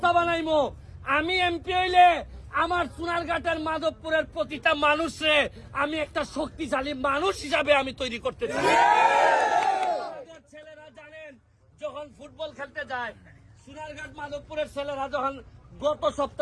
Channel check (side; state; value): both; identical; correlation 1.00